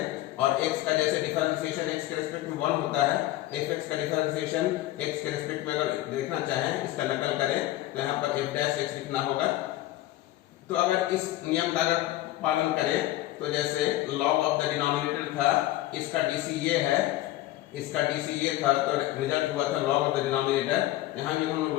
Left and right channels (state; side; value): quieter; right; 15.7 dB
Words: और x का जैसे डिफरेंशिएशन x के रेस्पेक्ट में 1 होता है, fx का डिफरेंशिएशन x के रेस्पेक्ट में अगर देखना चाहें, इसका नकल करें तो यहाँ पर f' लिखना होगा। तो अगर इस नियम का अगर पालन करें तो जैसे log ऑफ द डिनोमिनेटर था, इसका dc ये है, इसका dc ये था, तो रिजल्ट हुआ था log ऑफ द डिनोमिनेटर। यहाँ भी हम लोग